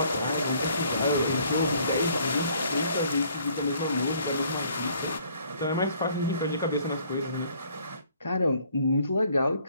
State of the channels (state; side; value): inverted; both; correlation -0.61